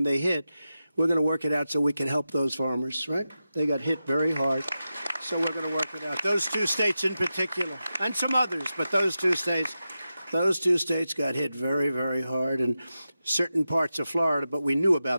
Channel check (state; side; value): inverted; both; correlation -0.92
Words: they hit. We're going to work it out so we can help those farmers, right? They got hit very hard, so we're going to work it out. Those two states in particular, and some others, but those two states got hit very, very hard, and certain parts of Florida, but we knew